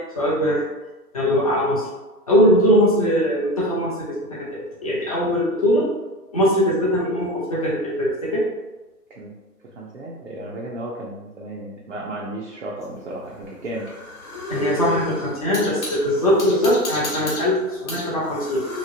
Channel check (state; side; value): normal; both; correlation 0.28